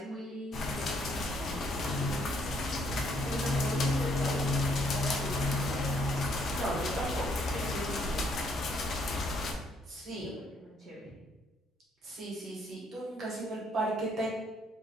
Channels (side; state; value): both; normal; correlation 0.69